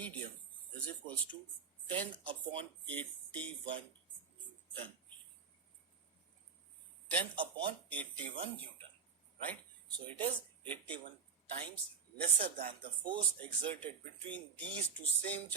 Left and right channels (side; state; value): left; quieter; 6.3 dB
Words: is equals to 10 upon 81 Newton. 10 upon 81 Newton, right? So it is 81 times lesser than the force exerted between these two same